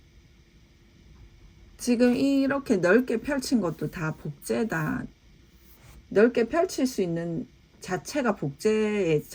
지금 이렇게 넓게 펼친 것도 다 복제다. 넓게 펼칠 수 있는 자체가 복제의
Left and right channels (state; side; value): identical; both; correlation 1.00